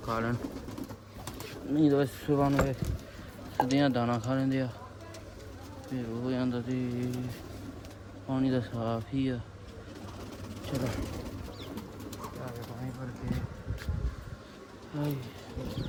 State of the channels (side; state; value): both; identical; correlation 1.00